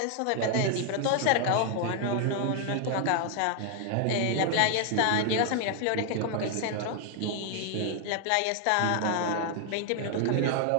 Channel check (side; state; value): both; different; correlation 0.00